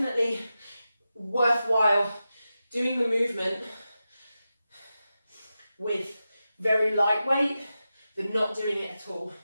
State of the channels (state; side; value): inverted; both; correlation -0.92